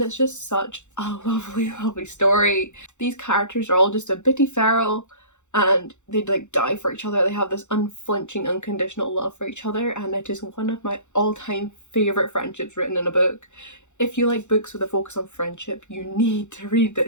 it's just such a lovely story. These characters are all just a bitty feral, and they'd like die for each other. They have this unflinching, unconditional love for each other, and it is one of my all-time favourite friendships written in a book. If you like books with a focus on friendship, you need to read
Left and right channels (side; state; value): right; late; 0.84 ms